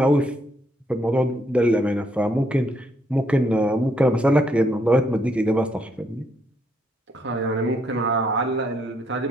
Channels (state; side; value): normal; both; correlation 0.73